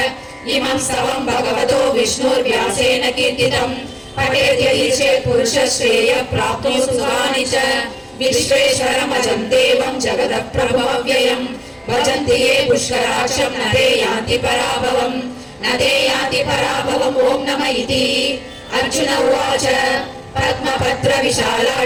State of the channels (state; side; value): identical; both; correlation 1.00